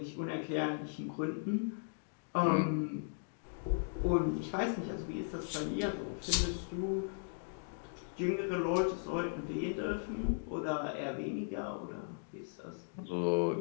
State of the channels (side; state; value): right; silent; digital silence